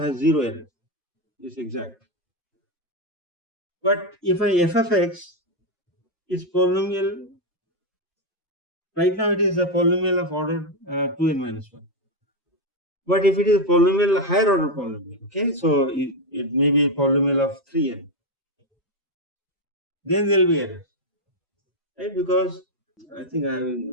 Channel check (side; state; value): both; normal; correlation 0.05